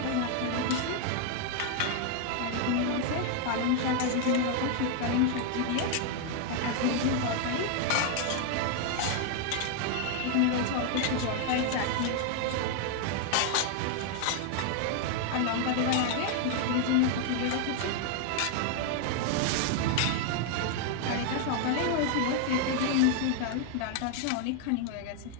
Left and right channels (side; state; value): both; different; correlation 0.00